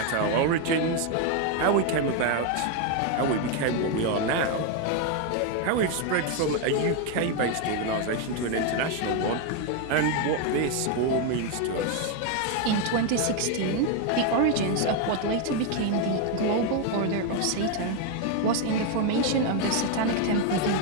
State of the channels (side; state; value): both; different; correlation 0.01